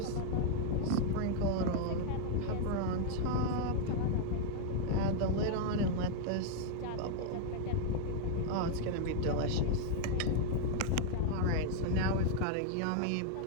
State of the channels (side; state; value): both; different; correlation 0.00